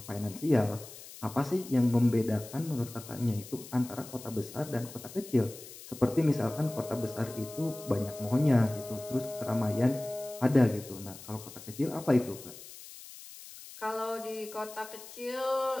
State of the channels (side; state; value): left; noise; hiss, 16 dB below the sound